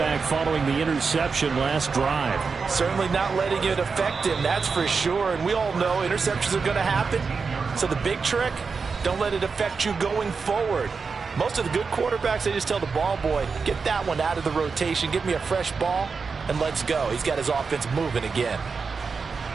following the interception last drive. Certainly not letting it affect him, that's for sure. And we all know interceptions are going to happen. So the big trick, don't let it affect you going forward. Most of the good quarterbacks, they just tell the ball boy, get that one out of the rotation, give me a fresh ball, and let's go. He's got his offense moving again.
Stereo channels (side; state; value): left; quieter; 5.0 dB